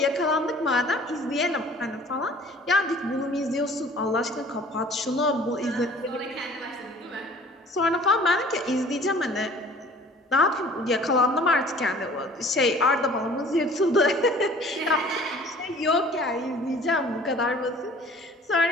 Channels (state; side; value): normal; both; correlation 0.50